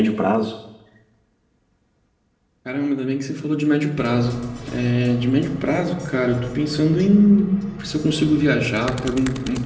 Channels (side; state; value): both; identical; correlation 1.00